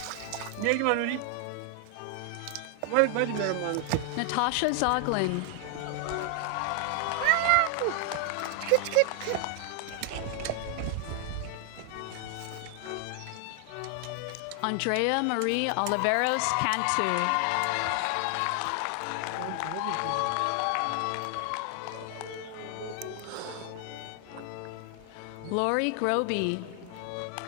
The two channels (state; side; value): different; both; correlation 0.00